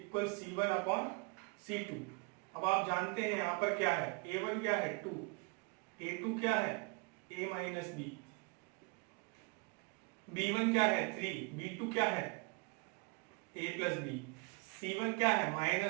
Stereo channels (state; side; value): quieter; left; 30.1 dB